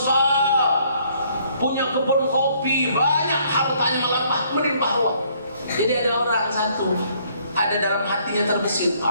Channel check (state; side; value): inverted; both; correlation -0.64